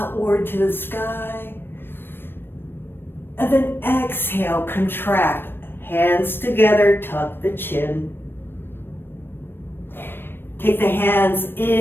to the sky. And then exhale, contract. Hands together, tuck the chin. Take the hands,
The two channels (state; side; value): late; right; 0.10 ms